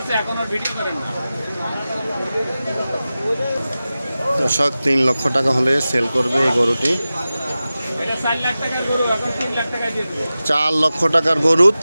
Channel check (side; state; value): both; inverted; correlation -0.95